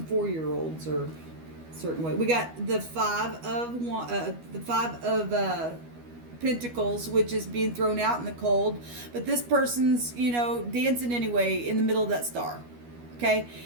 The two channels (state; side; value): late; left; 12 ms